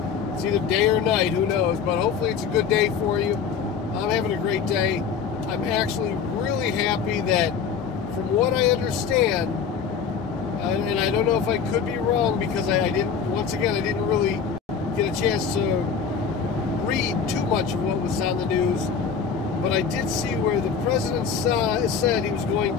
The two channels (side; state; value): right; quieter; 6.6 dB